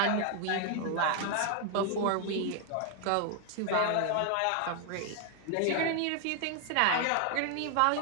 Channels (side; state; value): both; different; correlation 0.00